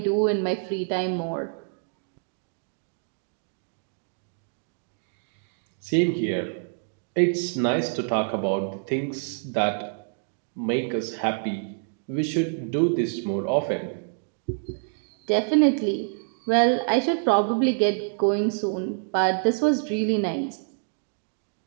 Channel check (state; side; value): silent; left; digital silence